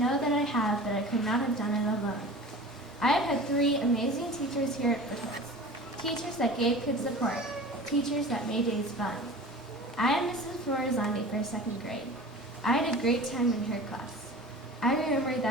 that I have, but I could not have done it alone. I have had 3 amazing teachers here at Foothills. Teachers that gave kids support. Teachers that made days fun. I am Mrs. Florizandi for 2nd grade. I had a great time in her class. I remember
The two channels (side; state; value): both; normal; correlation 0.38